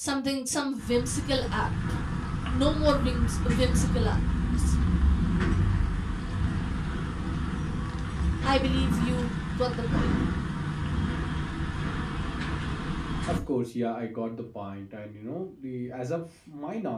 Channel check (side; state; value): both; identical; correlation 1.00